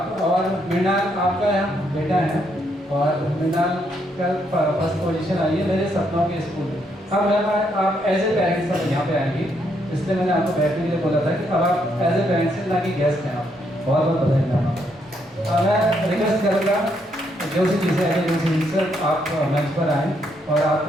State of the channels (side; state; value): both; normal; correlation 0.75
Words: और मृणाल आपका यहाँ बेटा है और मृणाल का फर्स्ट पोजीशन आई है मेरे सपनों के स्कूल में. अब आप एज ए पेरेंट्स सब यहाँ पे आएंगी, इसलिए मैंने आपको बैठने के लिए बोला था कि अब आप एज ए पेरेंट्स ना कि गेस्ट हैं. आप बहुत बहुत बधाई मैम. मैं रिक्वेस्ट करूँगा जो सी चीज़ें हैं जो सी सर आप मंच पर आएँ और